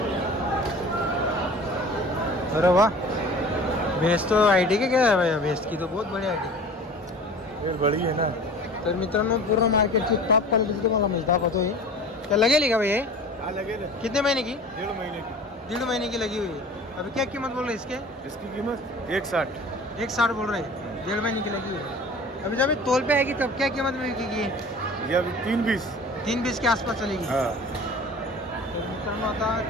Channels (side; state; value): both; normal; correlation 0.42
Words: अरे वाह भैंस तो आईडी के क्या है भैया? भैंस की तो बहुत बढ़िया आईडी बड़ी है ना. तर मित्रांनो पूर्ण मार्केटची टॉप क्वालिटीची तुम्हाला म्हैस दाखवतोय. क्या लगेली का भैया? हाँ लगेगा. कितने महीने की? 1.5 महीने की. 1.5 महीने की लगी हुई है. अभी क्या कीमत बोल रहे हैं इसके? इसकी कीमत 160. 160 बोल रहे हैं. 1.5 महीने की लगी हुई है. अभी जब तोल पे आएगी तब क्या कीमत में बिकेगी? ये अभी 320. 320 के आसपास चलेगी. हाँ. तर मित्रांनो आता